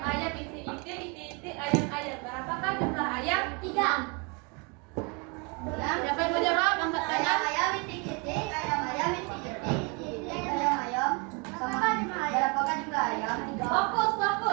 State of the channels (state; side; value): quieter; left; 32.0 dB